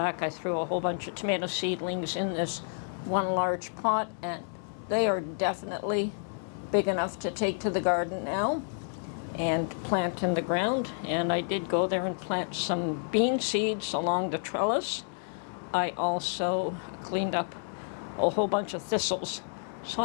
I threw a whole bunch of tomato seedlings in this one large pot, and they are definitely big enough to take to the garden now and plant in the ground. And I did go there and plant some bean seeds along the trellis. I also cleaned up a whole bunch of thistles. So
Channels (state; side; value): silent; right; digital silence